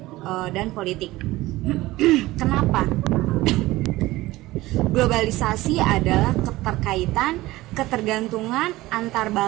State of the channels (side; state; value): left; quieter; 18.3 dB